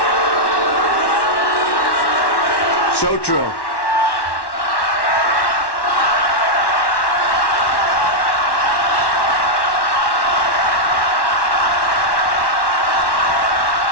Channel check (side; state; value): right; late; 1.1 ms